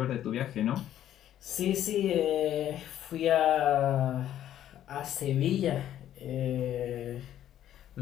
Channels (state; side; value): quieter; right; 11.5 dB